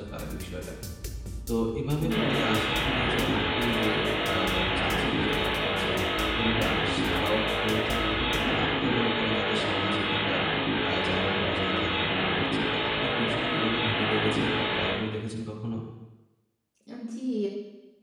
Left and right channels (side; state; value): both; identical; correlation 1.00